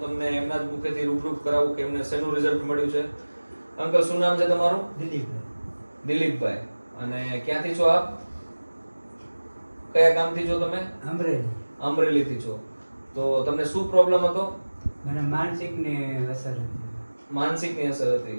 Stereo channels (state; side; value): inverted; both; correlation -1.00